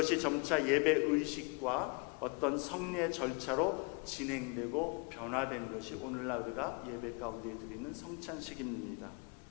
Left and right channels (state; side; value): quieter; right; 31.8 dB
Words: 점차 예배 의식과 어떤 성례 절차로 진행되고 변화된 것이 오늘날 우리가 예배 가운데 드리는 성찬식입니다.